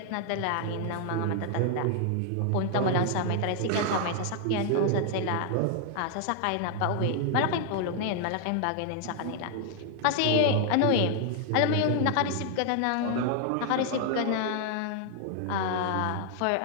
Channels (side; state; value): both; different; correlation 0.00